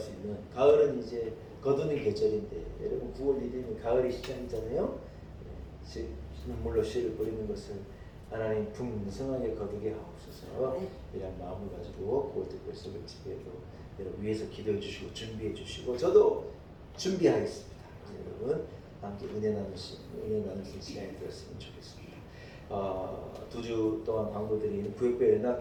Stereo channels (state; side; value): identical; both; correlation 1.00